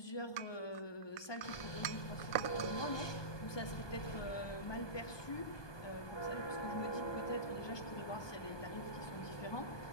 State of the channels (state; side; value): late; right; 1.2 ms